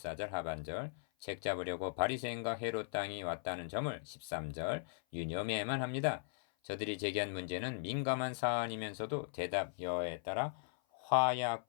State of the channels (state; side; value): silent; right; 52 dB below the other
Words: 하반절 책 잡으려고 바리새인과 헤롯 땅이 왔다는 점을 13절 유념해야만 합니다. 저들이 제기한 문제는 민감한 사안이면서도 대답 여에 따라